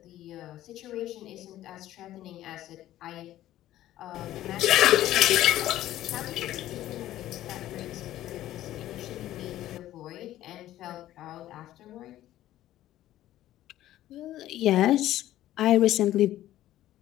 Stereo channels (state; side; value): quieter; right; 13.9 dB